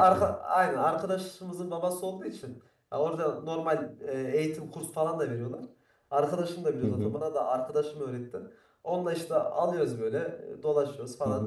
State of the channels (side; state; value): both; identical; correlation 1.00